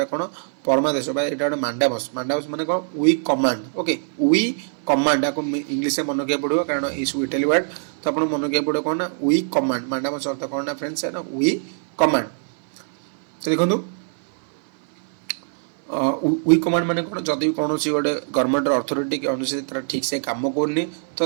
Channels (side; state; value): left; silent; 57 dB below the other